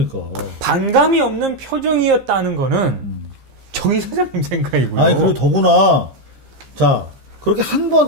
반감이 없는 표정이었다는 거는 정 이사장님 생각이고요. 아니 그리고 더구나 자 그렇게 한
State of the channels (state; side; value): late; left; 15 ms